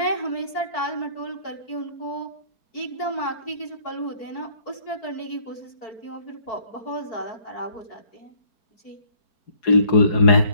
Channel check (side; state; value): right; late; 4.5 ms